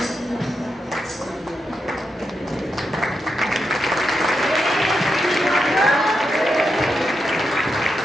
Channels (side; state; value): both; normal; correlation 0.85